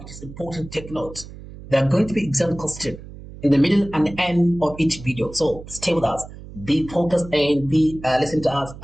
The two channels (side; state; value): right; noise; hum, 15 dB below the sound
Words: is important to take note. There are going to be exam questions in the middle and the end of each video. So stay with us, be focused, and be listen to us